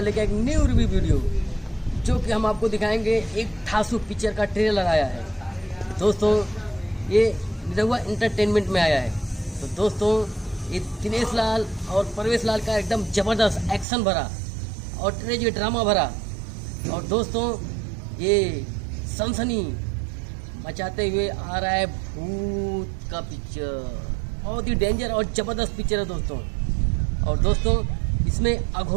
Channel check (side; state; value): left; drops out; at 13.9 s